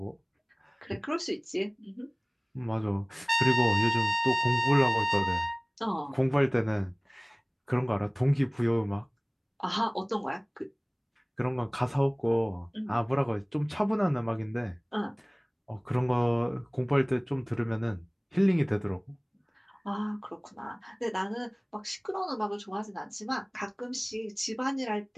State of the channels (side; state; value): both; identical; correlation 1.00